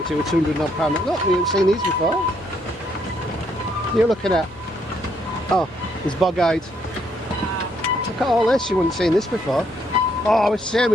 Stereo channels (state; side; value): normal; both; correlation 0.72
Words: it was £200 odd. Look, we haven't seen these before. What are you looking at? Oh, it's bog-eyed. Look at all this, you wouldn't seen this before. Oh, it's a shame